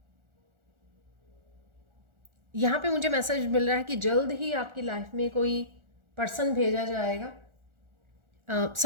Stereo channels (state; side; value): late; left; 1.4 ms